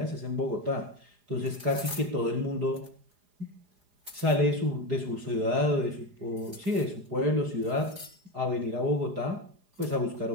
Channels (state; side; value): late; left; 4.9 ms